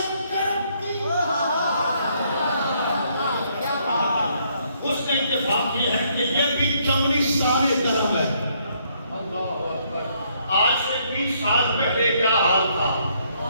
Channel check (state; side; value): inverted; both; correlation -0.70